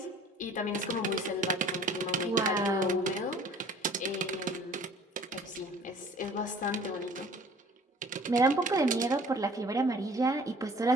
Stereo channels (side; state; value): both; normal; correlation 0.50